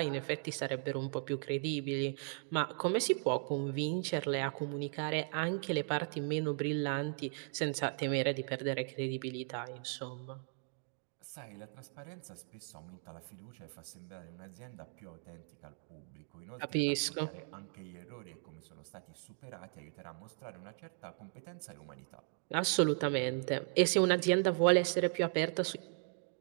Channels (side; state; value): left; silent; 53 dB below the other